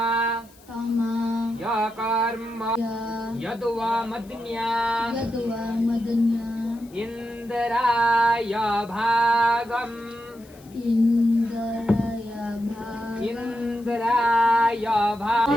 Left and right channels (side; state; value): left; noise; hiss, 27 dB below the sound